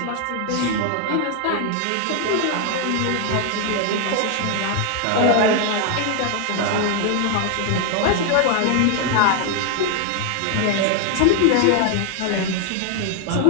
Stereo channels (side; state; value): both; different; correlation 0.00